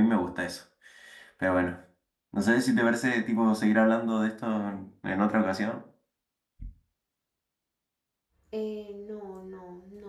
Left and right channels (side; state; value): both; identical; correlation 1.00